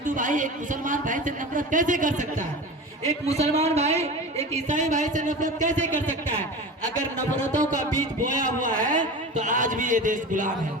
भाई एक मुसलमान भाई से नफरत कैसे कर सकता है? एक मुसलमान भाई एक ईसाई भाई से नफरत कैसे कर सकता है? अगर नफरतों का बीज बोया हुआ है तो आज भी ये देश गुलाम है।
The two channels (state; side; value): normal; both; correlation 0.31